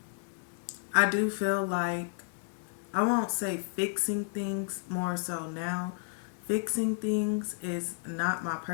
I do feel like, I won't say fixing things more so now. Fixing things is not my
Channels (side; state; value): right; silent; digital silence